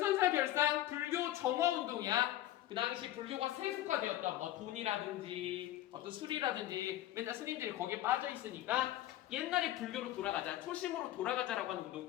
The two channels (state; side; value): quieter; right; 13.9 dB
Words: 별상 불교 정화운동이야. 그 당시 불교가 세속화되었다. 뭐 돈이라든지 어떤 술이라든지 맨날 스님들이 거기에 빠져 있으니까 옛날에 불교로 돌아가자, 초심으로 돌아가자라고 하는